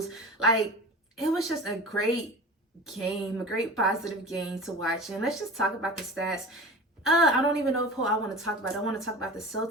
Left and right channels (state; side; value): normal; both; correlation 0.34